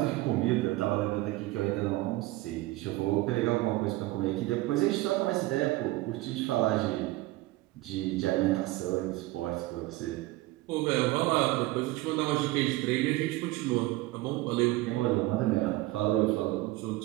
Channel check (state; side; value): quieter; left; 18.8 dB